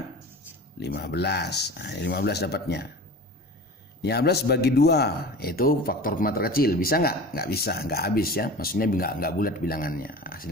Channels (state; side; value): normal; both; correlation 0.36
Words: Nah, 15 dapatnya. 15 bagi 2 yaitu faktor prima terkecil. Bisa nggak? Nggak bisa, nggak habis ya. Maksudnya nggak bulat bilangannya,